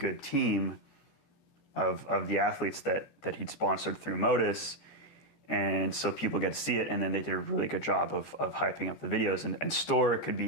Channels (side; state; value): right; late; 14 ms